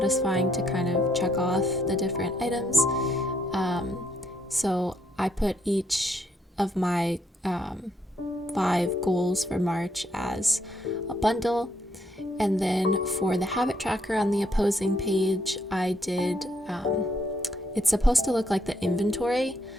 to kind of check off the different items. So I put each of my 5 goals for March as a bundle, and then for the habit tracker on the opposing page, I did it's supposed to look like the inventory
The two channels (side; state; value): both; normal; correlation 0.73